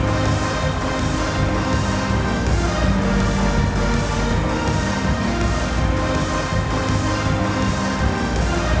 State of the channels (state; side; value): identical; both; correlation 1.00